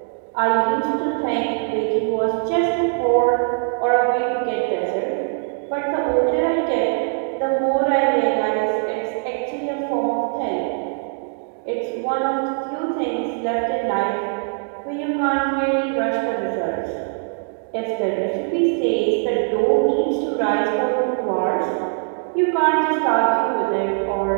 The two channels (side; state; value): left; silent; 65 dB below the other